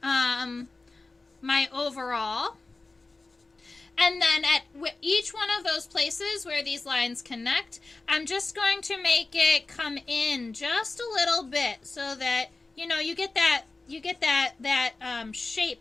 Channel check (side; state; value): right; quieter; 3.5 dB